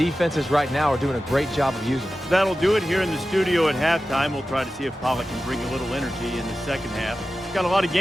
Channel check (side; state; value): both; normal; correlation 0.94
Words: right now are doing a great job of using. That'll do it here in the studio at halftime. We'll try to see if Pollack can bring a little energy in the second half. Got a lot of